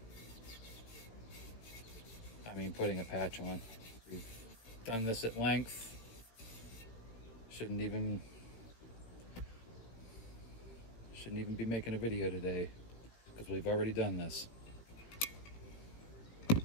I mean, putting a patch on. We've done this at length. Shouldn't even be making a video today because we've already done this.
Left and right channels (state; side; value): late; right; 18 ms